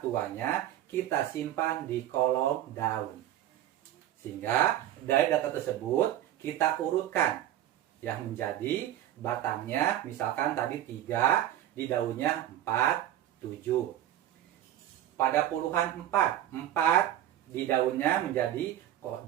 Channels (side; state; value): left; quieter; 12.4 dB